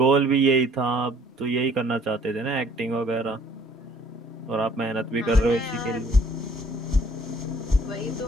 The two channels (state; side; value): normal; both; correlation 0.58